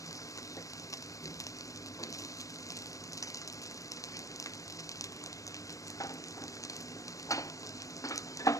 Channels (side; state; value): right; late; 0.16 ms